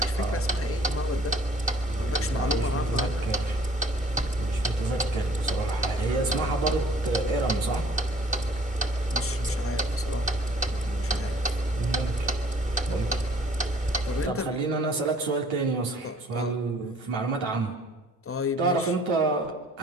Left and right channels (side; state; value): both; normal; correlation 0.56